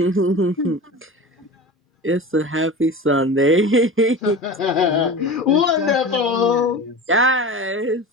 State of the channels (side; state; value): both; normal; correlation 0.32